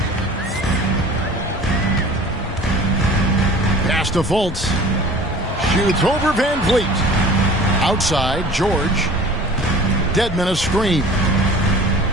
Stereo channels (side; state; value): both; normal; correlation 0.44